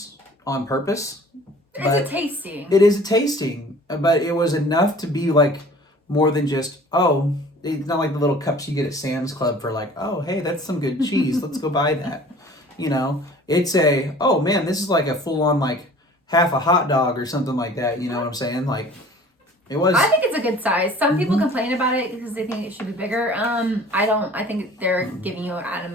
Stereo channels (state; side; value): normal; both; correlation 0.48